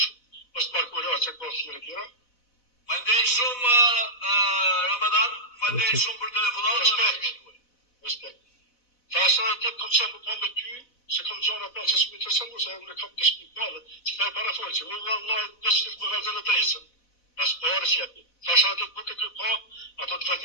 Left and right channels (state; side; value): late; right; 4.0 ms